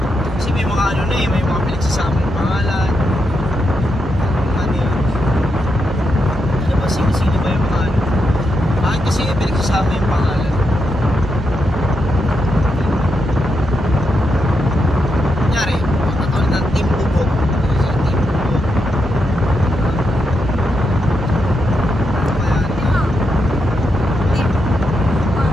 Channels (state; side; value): normal; both; correlation 0.83